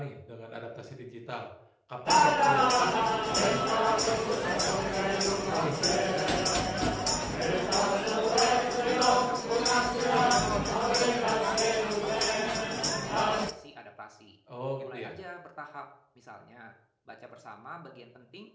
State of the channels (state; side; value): identical; both; correlation 1.00